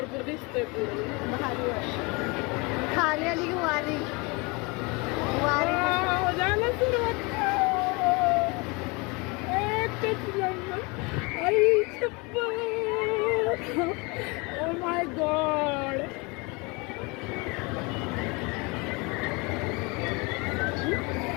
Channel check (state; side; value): quieter; right; 27.8 dB